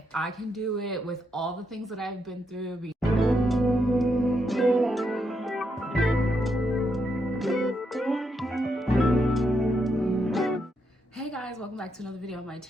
I can do it with all the things that I've been through. Hey guys, welcome back to another video on my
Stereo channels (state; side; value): normal; both; correlation 0.80